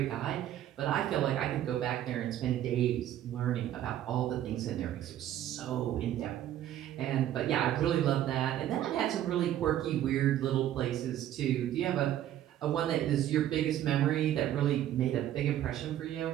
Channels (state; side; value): quieter; left; 11.9 dB